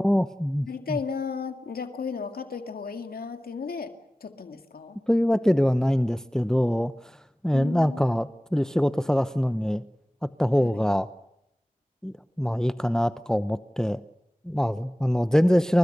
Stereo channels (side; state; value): both; normal; correlation 0.97